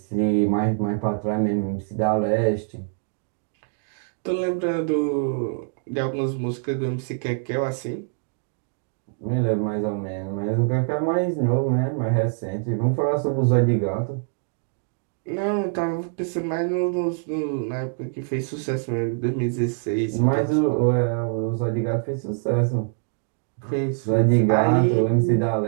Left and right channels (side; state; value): left; silent; digital silence